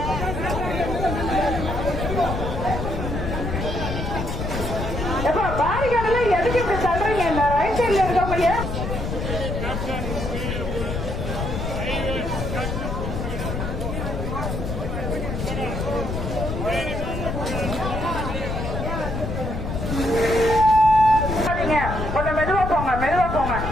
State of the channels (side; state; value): left; noise; rumble, 4 dB below the sound